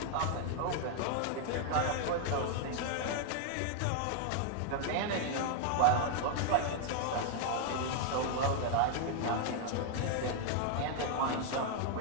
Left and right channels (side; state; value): both; different; correlation 0.00